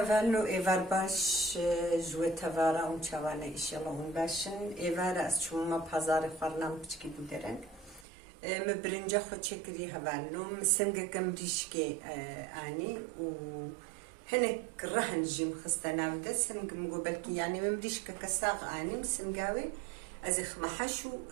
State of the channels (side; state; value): left; drops out; at 8.1 s